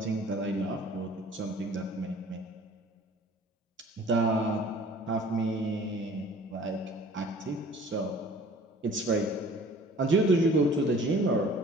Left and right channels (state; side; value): normal; both; correlation 0.49